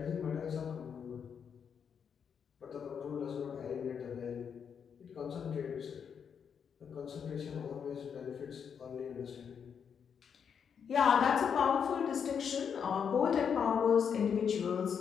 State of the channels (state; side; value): quieter; right; 7.2 dB